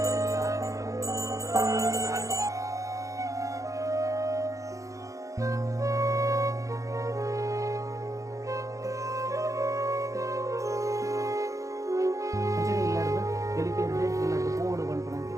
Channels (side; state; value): left; late; 0.16 ms